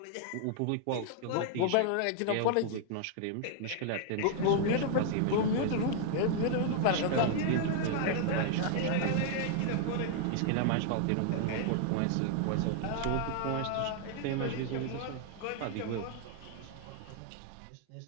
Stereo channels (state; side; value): different; both; correlation 0.00